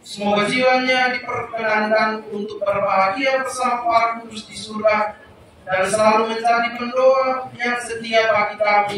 Semoga jiwanya diperkenankan untuk berbahagia bersama para kudus di surga dan selalu menjadi pendoa yang setia bagi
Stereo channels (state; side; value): identical; both; correlation 1.00